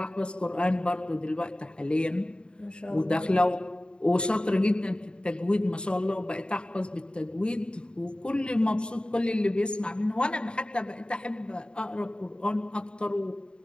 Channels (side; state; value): right; late; 0.052 ms